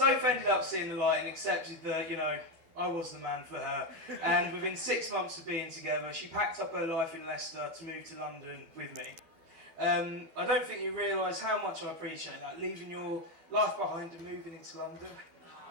ended up seeing the light and accepted that, I was the man for her. And within 6 months of being together, she packed up her life in Leicester to move to London with me. I don't think you realise how much I appreciate that, leaving your life behind and moving into London.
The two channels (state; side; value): late; left; 12 ms